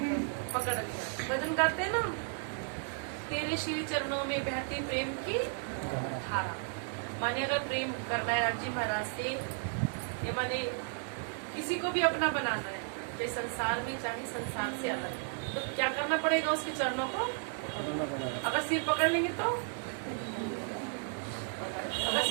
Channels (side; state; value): left; silent; 55 dB below the other